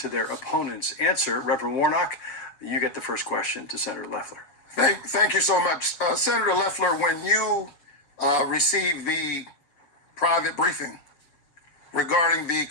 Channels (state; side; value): late; right; 7.3 ms